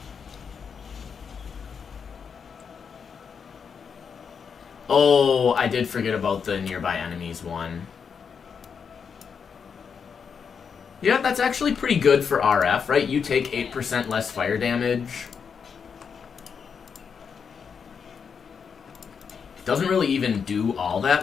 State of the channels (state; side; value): quieter; right; 6.4 dB